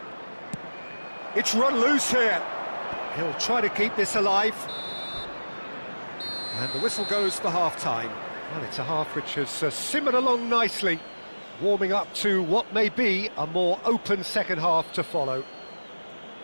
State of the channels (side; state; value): both; inverted; correlation -1.00